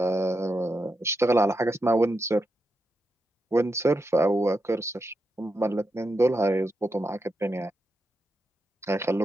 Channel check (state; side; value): normal; both; correlation 0.86